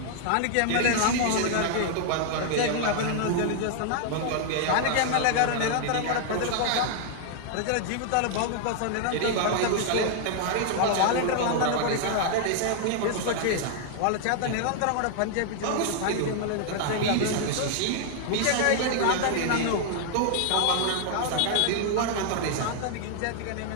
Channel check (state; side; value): different; both; correlation 0.00